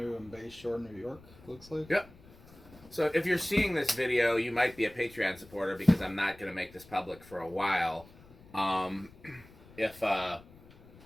in Bay Shore, New York. Looks like. yep. So if you're seeing this video, you might be a Patreon supporter because I'm not going to make this public for a while. If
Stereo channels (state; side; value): noise; left; rumble, 23 dB below the sound